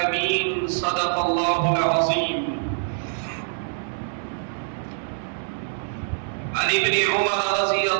صدق الله العظيم عن ابن عمر رضي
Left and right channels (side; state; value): left; silent; 62 dB below the other